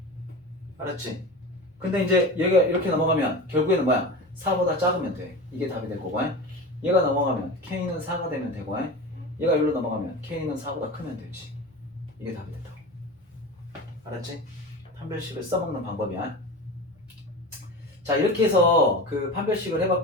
알았지? 근데 이제 얘가 이렇게 넘어가면 결국에는 뭐야? 4보다 작으면 돼. 이게 답이 될 거고. 얘가 넘어가면 k는 4가 되면 되고 얘가 여기로 넘어가면 k는 4보다 크면 되지. 이게 답이 된다고. 알았지? 판별식을 써먹는 방법이야. 자, 이렇게 해서 그 판별식을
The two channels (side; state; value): both; normal; correlation 0.29